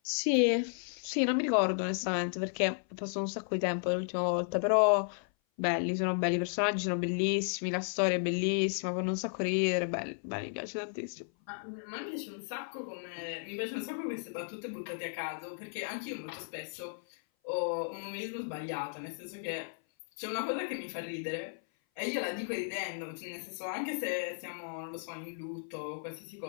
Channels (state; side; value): silent; right; 55 dB below the other